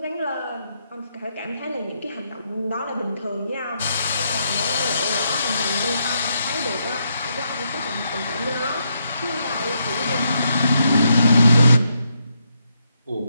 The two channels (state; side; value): inverted; both; correlation -0.79